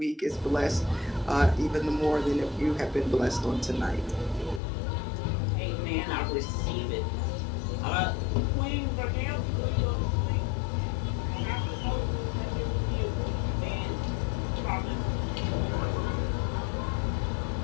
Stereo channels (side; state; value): right; drops out; at 4.6 s